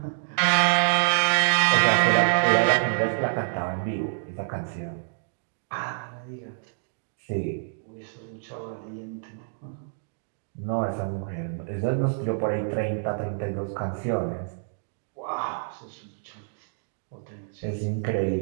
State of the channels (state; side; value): silent; left; digital silence